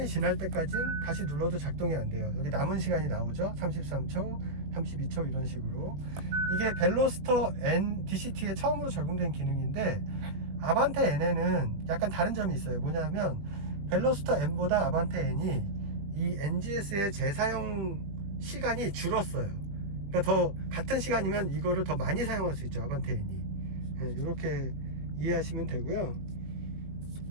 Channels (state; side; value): late; left; 20 ms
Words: 지날 때까지는 다시 눌러도 작동이 안 돼요. 여기 남은 시간이 나오죠. 33초, 32초 이런 식으로. 이게 벨로스터 N DCT에 처음으로 적용된 기능인데, 아반떼 N에는 약간 다른 점이 있어요. 뭐냐면 벨로스터 N보다 아반떼 N이 이 NGS의 재사용 시간이 줄었어요. 그러니까 더 같은 시간이면 이거를 더 많이 사용할 수 있죠, 아반떼 N이. 네, 이렇게 이해하시면 되고요.